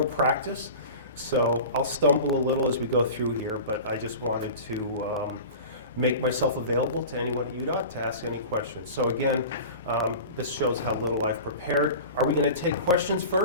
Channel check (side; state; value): both; inverted; correlation -0.35